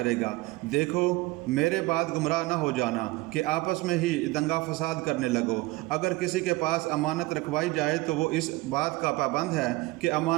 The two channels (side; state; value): left; quieter; 21.4 dB